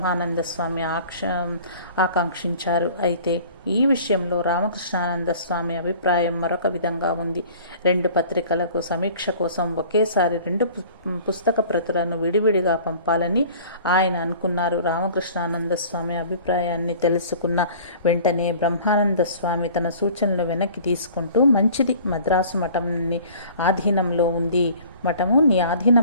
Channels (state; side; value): inverted; both; correlation -0.47